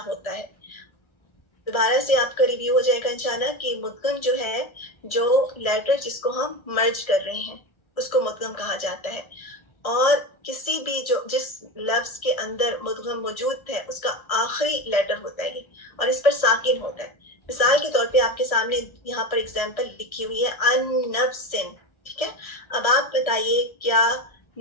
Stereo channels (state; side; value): late; right; 1.3 ms